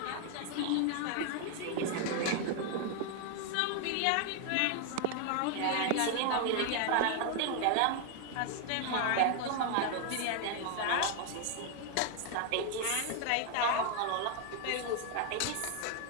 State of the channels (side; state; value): both; different; correlation 0.01